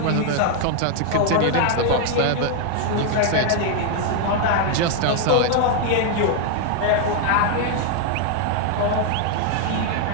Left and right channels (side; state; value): both; different; correlation 0.00